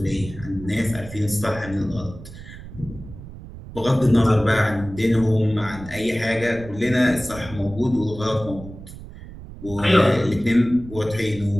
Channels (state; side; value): noise; right; rumble, 14 dB below the sound